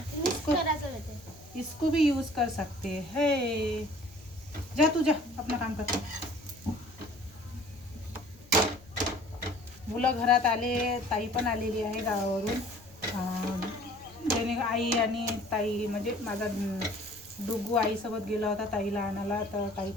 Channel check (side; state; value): left; noise; rumble, 24 dB below the sound